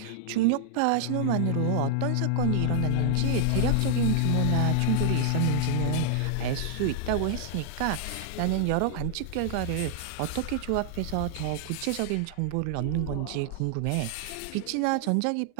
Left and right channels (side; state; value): both; different; correlation -0.01